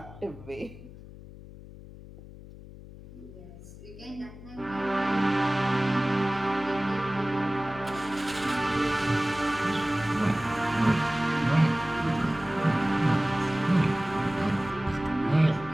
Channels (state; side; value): noise; left; hum, 16 dB below the sound